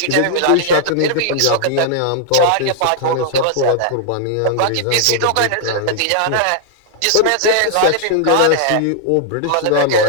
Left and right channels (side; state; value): both; different; correlation -0.01